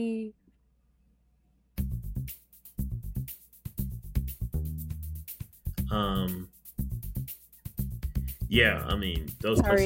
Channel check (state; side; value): identical; both; correlation 1.00